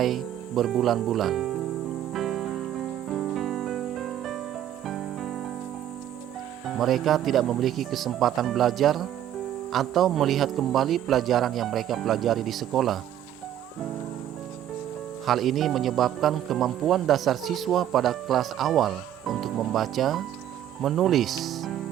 berbulan-bulan. Mereka tidak memiliki kesempatan belajar atau melihat kembali pelajaran yang mereka pelajari di sekolah. Hal ini menyebabkan kemampuan dasar siswa pada kelas awal untuk membaca, menulis,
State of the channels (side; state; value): left; quieter; 11.3 dB